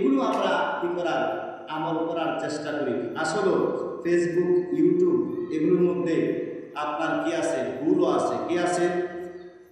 আমরা কি করার? আমল করার চেষ্টা করি। আসলে ফেসবুক ইউটিউব এগুলোর মধ্যে আপনার কি আছে? ভুলও আছে। কি আছে?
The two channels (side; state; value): both; identical; correlation 1.00